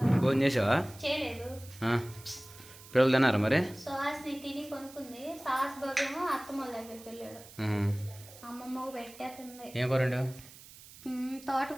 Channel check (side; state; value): right; noise; hiss, 19 dB below the sound